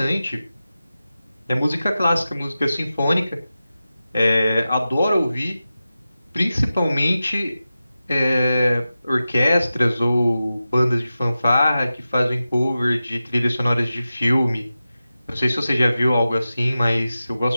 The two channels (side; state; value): both; inverted; correlation -0.94